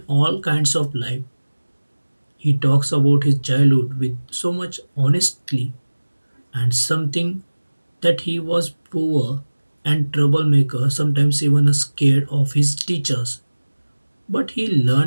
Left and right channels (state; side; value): inverted; both; correlation -1.00